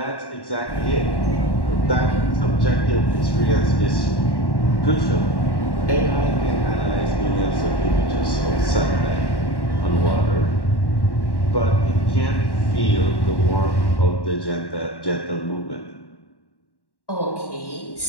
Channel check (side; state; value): right; late; 1.1 ms